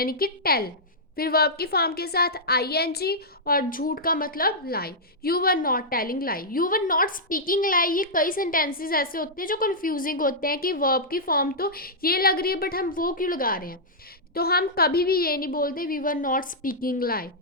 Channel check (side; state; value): both; normal; correlation -0.09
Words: कि टेल। फिर वर्ब की फॉर्म के साथ आईएनजी, और झूठ का मतलब lie. You were not telling lie, you were not speaking lie. ये कई सेंटेंसेस ऐसे होते हैं जो कंफ्यूजिंग होते हैं कि वर्ब की फॉर्म तो ये लग रही है, बट हम वो क्यों लगा रहे हैं। तो हम कभी भी ये नहीं बोलते we were not speaking lie,